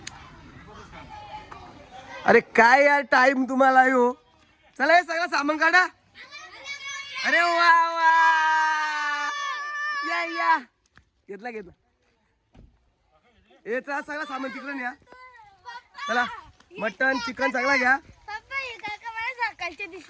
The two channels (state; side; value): identical; both; correlation 1.00